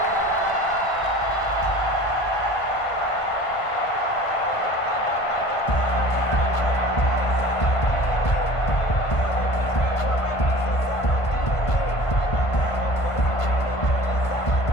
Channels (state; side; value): late; right; 1.5 ms